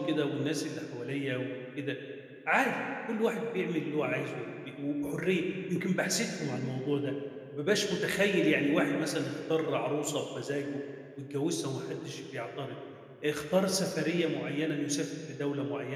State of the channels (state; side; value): identical; both; correlation 1.00